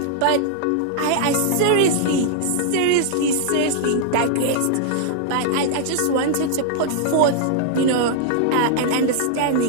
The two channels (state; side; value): different; both; correlation -0.01